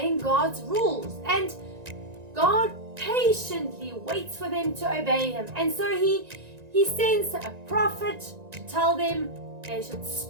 God's rules, and God patiently waits for them to obey Him. And so He sends a prophet to tell them they should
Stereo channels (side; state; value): left; late; 1.9 ms